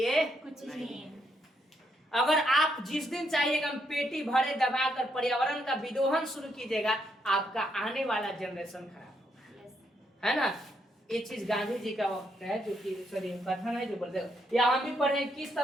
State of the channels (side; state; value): both; normal; correlation 0.76